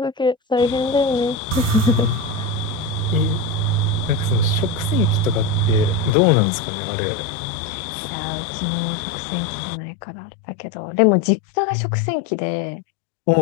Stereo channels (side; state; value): right; drops out; at 6.1 s